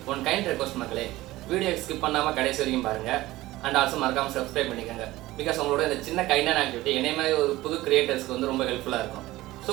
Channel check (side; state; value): left; quieter; 17.6 dB